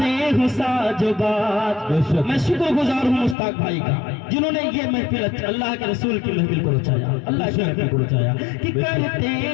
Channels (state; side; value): drops out; right; at 3.4 s